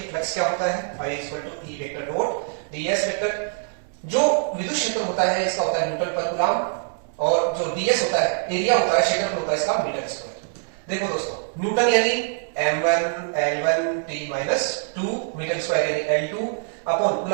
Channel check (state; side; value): silent; left; 63 dB below the other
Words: फ्लक्स क्या होता है? I = E vector dot ds vector. जो विद्युत क्षेत्र होता है इसका होता है न्यूटन पर कूलम, और जो ds होता है, एरिया होता है, क्षेत्रफल होता है इसका मीटर स्क्वायर। देखो दोस्तों, न्यूटन यानी m1 l1 t-2, metre square यानी l2 अपॉन